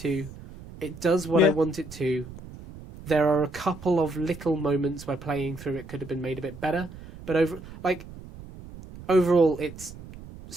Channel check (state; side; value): noise; right; rumble, 15 dB below the sound